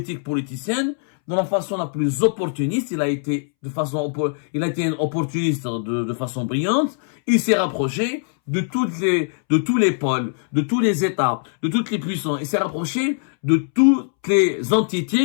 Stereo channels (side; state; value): right; silent; 65 dB below the other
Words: politicienne, de la façon la plus opportuniste. Il a été un opportuniste de façon brillante. Il s'est rapproché de tous les pôles, de tous les États, de toutes les puissances. Il s'est rapproché de toutes les